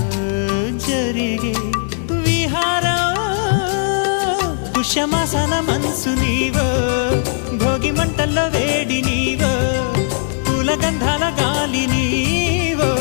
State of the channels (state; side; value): silent; right; 63 dB below the other